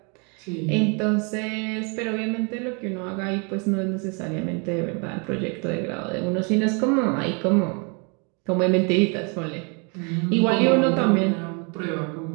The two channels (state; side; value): quieter; left; 34.5 dB